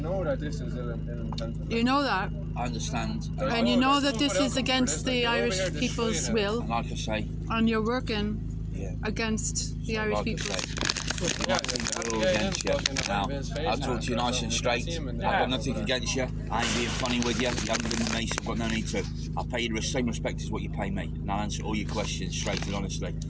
know that this is ill-intentioned. You know that. I understand. And you know that this is against the Irish people's will. And like I say, and you're working against the Irish people. We're all against you. Now, I'll talk to you nice and straight. I've got nothing against you. I ain't being funny with you. You haven't been with me, so I've got no need to. I'll pay you the same respect as what you pay me, and I'll answer all your questions straight and honestly.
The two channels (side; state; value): both; identical; correlation 1.00